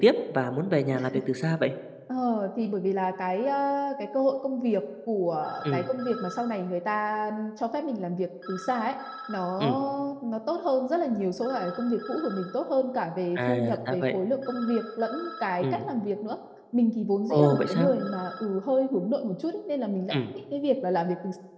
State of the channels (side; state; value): both; identical; correlation 1.00